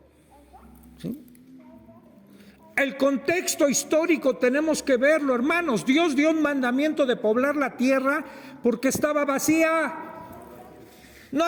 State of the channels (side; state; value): both; identical; correlation 1.00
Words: ¿Sí? El contexto histórico tenemos que verlo, hermanos. Dios dio un mandamiento de poblar la tierra porque estaba vacía. No